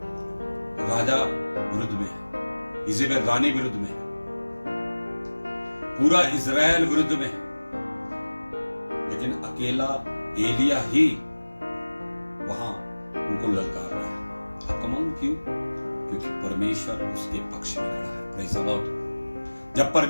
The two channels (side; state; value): both; inverted; correlation -1.00